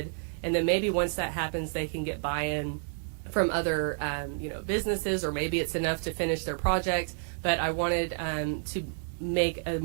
and then maybe once that happens, they can get buy-in from other, businesses, or maybe it's enough to finish their project. But I wanted to make a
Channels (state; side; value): silent; left; digital silence